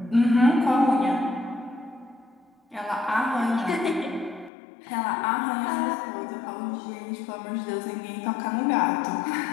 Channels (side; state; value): right; drops out; at 4.5 s